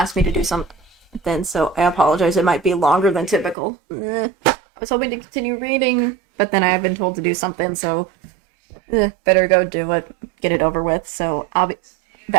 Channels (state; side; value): drops out; left; at 3.6 s